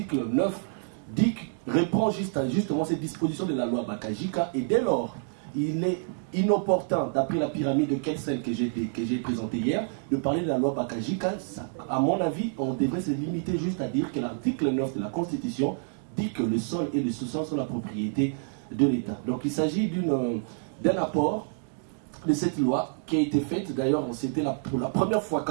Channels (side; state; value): left; silent; digital silence